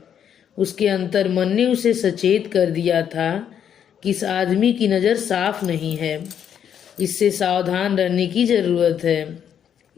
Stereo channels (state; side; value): quieter; right; 8.8 dB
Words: उसके अंतर मन ने उसे सचेत कर दिया था कि इस आदमी की नज़र साफ नहीं है, इससे सावधान रहने की जरूरत है।